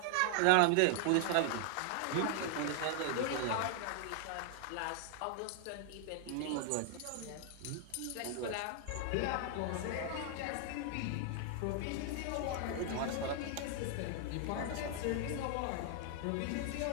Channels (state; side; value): different; both; correlation 0.00